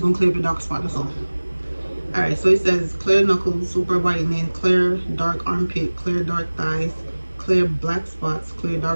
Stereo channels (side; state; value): both; inverted; correlation -1.00